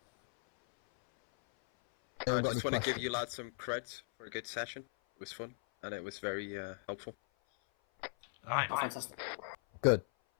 I just want to give you lads some credit for a good session. It was fun, and it was very helpful. Alright. Fantastic. Good.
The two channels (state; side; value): silent; right; 53 dB below the other